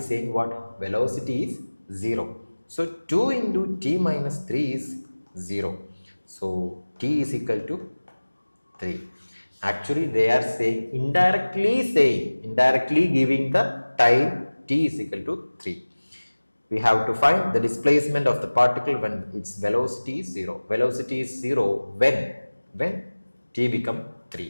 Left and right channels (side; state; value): both; inverted; correlation -1.00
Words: what? Velocity is 0. So, 2 into t minus 3 is 0. So, t is equal to 3. Actually, they are saying, indirectly giving the time t is equal to 3. We have to find the displacement of the particle when its velocity is 0. Velocity is 0 when t become